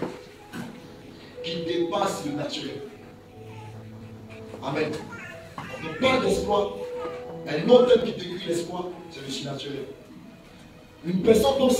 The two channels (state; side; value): identical; both; correlation 1.00